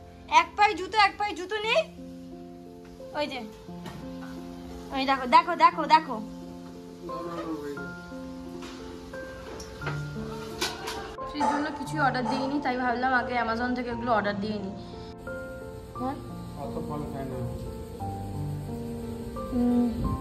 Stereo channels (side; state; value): both; identical; correlation 1.00